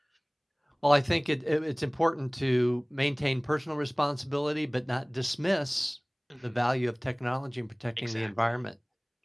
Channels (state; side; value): identical; both; correlation 1.00